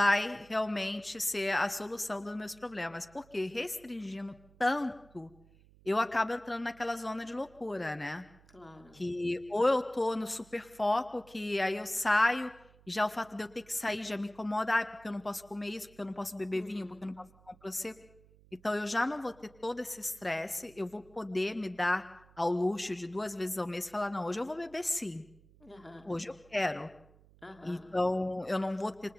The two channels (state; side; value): noise; right; hum, 26 dB below the sound